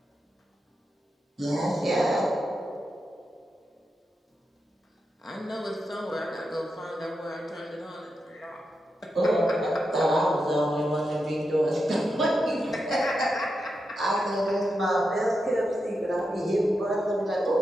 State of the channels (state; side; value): normal; both; correlation 0.87